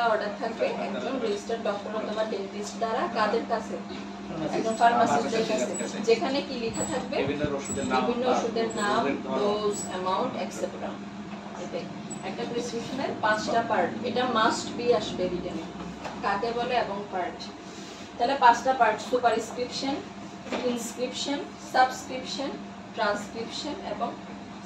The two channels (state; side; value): identical; both; correlation 1.00